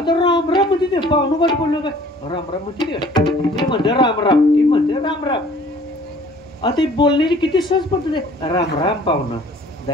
राम राम म्हणते ते पाहुणं गाठ बोललो काय? राम राम म्हणते ते म्हणते राम राम, ती म्हणते राम राम. आता बोलण्याची किती सहज पद्धत आहे. राम राम पाहुणा,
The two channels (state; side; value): normal; both; correlation 0.53